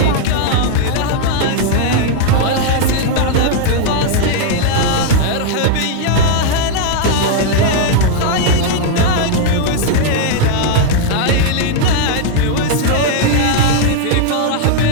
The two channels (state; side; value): different; both; correlation 0.00